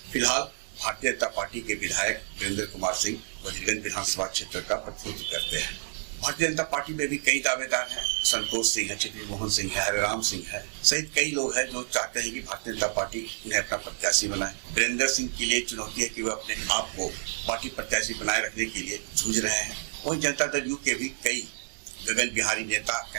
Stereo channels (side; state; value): left; silent; 59 dB below the other